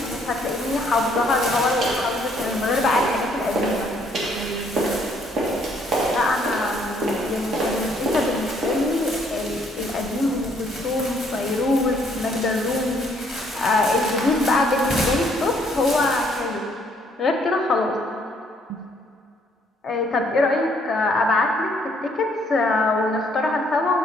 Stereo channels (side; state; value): both; normal; correlation 0.66